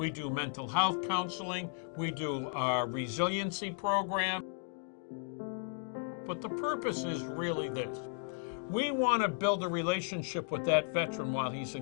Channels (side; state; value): right; silent; 54 dB below the other